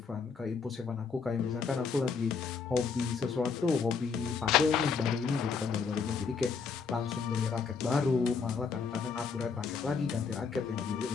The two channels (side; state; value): right; quieter; 5.5 dB